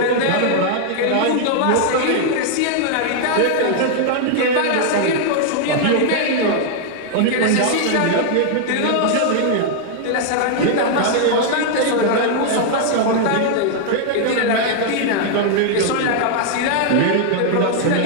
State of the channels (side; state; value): both; different; correlation 0.00